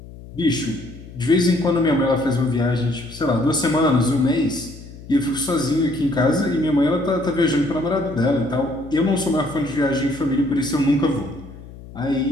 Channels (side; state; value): left; noise; hum, 16 dB below the sound